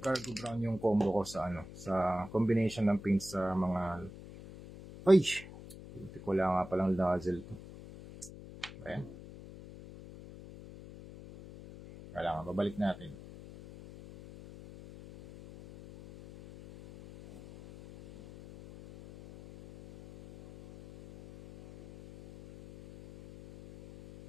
brown yung combo ko sa sa combination ng paint sa mga hindi ko lang nga palang nozzle to. Ayan. Kailangan babalik natin.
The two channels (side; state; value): left; noise; hum, 16 dB below the sound